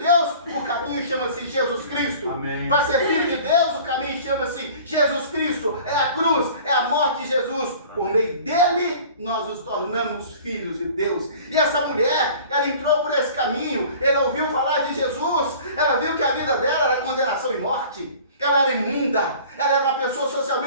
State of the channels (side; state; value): both; inverted; correlation -0.45